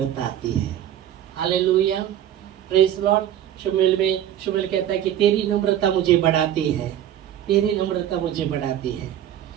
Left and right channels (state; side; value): quieter; left; 11.1 dB